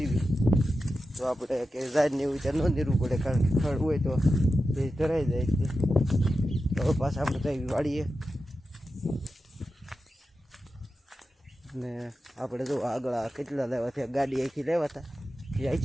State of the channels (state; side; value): normal; both; correlation 0.91